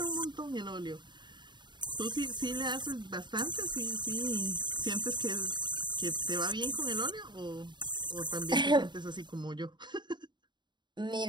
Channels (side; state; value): left; late; 0.22 ms